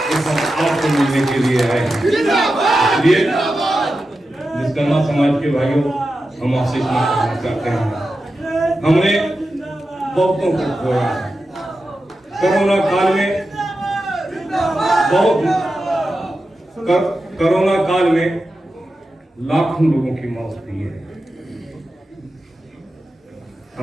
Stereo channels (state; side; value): normal; both; correlation 0.91